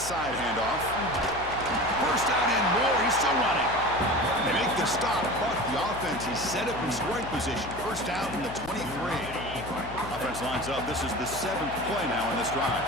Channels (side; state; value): left; noise; hum, 13 dB below the sound